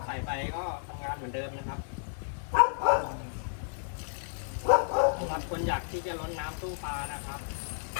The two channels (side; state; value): right; silent; 57 dB below the other